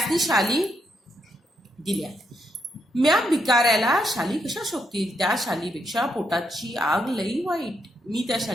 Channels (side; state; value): both; normal; correlation 0.78